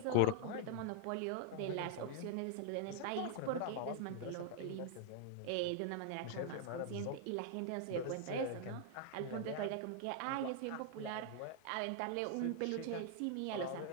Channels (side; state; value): both; different; correlation -0.01